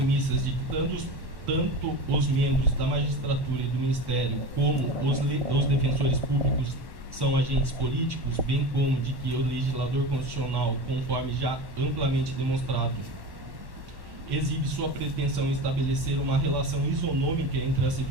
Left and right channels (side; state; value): left; late; 1.1 ms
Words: de que tanto os membros da magistratura e do Ministério como os defensores públicos são agentes políticos, bem como de que o legislador constitucional, conforme já amplamente demonstrado, exibe sua pretensão em estabelecer uma relação isonômica entre as